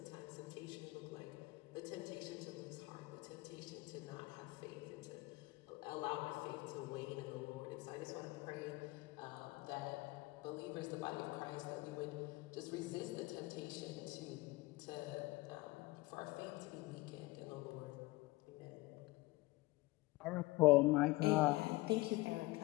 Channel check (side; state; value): right; quieter; 21.1 dB